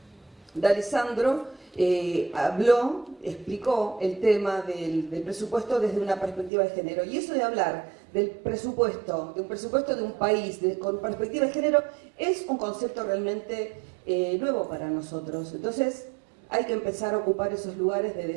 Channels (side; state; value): left; drops out; at 6.5 s